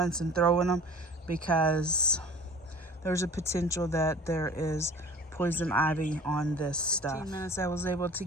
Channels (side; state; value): both; normal; correlation 0.44